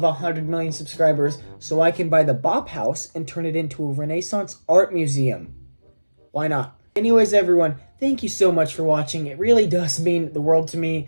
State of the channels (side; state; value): both; inverted; correlation -1.00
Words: 100 million subscribers so I can buy the Bop House and turn it into a Renaissance art museum. Why not? Anyways everyone, thank you so much for watching. It really does mean the world to me.